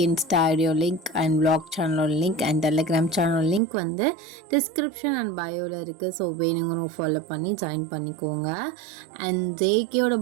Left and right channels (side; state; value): left; drops out; at 3.6 s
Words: இன்ஸ்டா ஐடியோ லிங்க் அண்ட் வ்ளாக் சேனலோட லிங்க் அண்ட் டெலிகிராம் சேனலோட லிங்க் வந்து டிஸ்கிரிப்ஷன் அண்ட் பயோவில் இருக்குது. ஸோ வேணுங்கிறவங்க ஃபாலோ பண்ணி ஜாயின் பண்ணிக்கோங்க. அண்ட் ஜேகேயோட